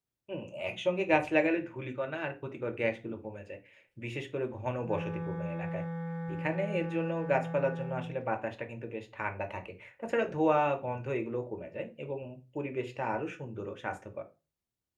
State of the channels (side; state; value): both; identical; correlation 1.00